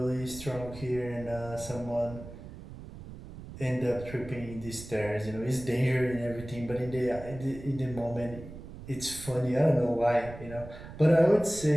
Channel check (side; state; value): right; noise; rumble, 14 dB below the sound